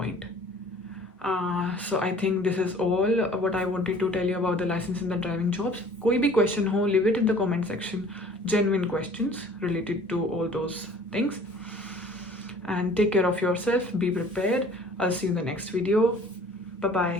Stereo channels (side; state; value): both; normal; correlation 0.51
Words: So I think this is all what I wanted to tell you about the license and the driving jobs. कोई भी question हो, leave it in the comment section. Genuine questions related to all those things. and take care of yourself. Be prepared. I'll see you in the next video.